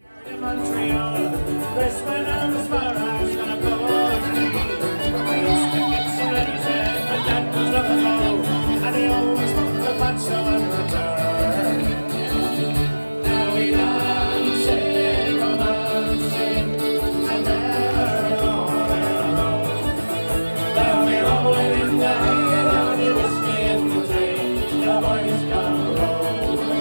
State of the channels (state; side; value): inverted; both; correlation -1.00